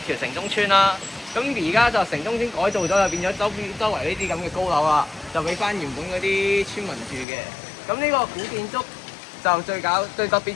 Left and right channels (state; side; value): drops out; right; at 7.2 s